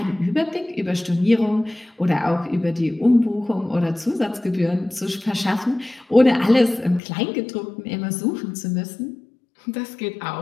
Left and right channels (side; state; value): right; drops out; at 7.0 s